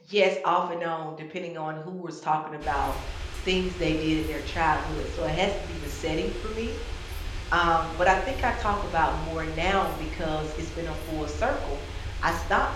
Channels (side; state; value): both; identical; correlation 1.00